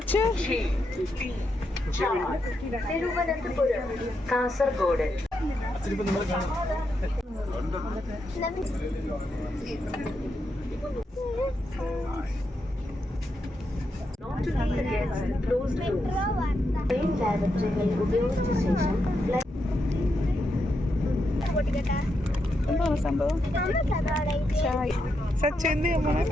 തിരുവനന്തപുരം, കാസർഗോഡ്. ഉപയോഗിച്ച ശേഷം എന്താണ് സംഭവം? സച്ചു എന്ത്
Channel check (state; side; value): normal; both; correlation 0.83